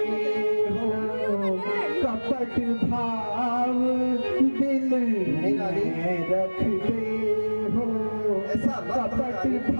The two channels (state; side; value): inverted; both; correlation -1.00